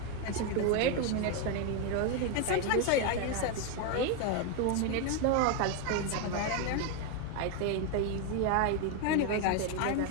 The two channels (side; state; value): both; different; correlation 0.01